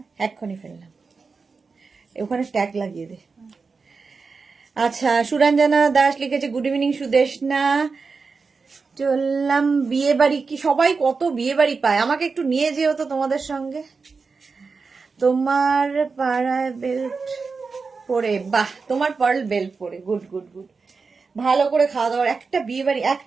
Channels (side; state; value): left; quieter; 4.7 dB